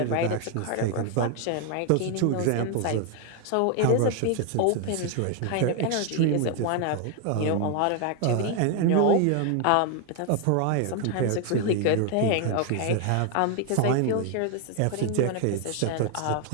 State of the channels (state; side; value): different; both; correlation 0.00